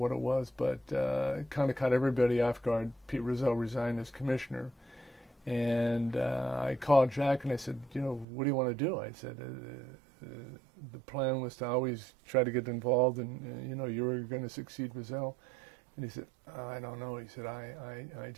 it was, but it kind of caught everybody off guard. Pete Rozelle resigned as commissioner, And I called Jack and I said, you know, what do you want to do? I said, the plan was to always try to get involved, and you know, you were going to succeed Rizal. And he said, I don't know. He said, I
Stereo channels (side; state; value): left; drops out; at 8.2 s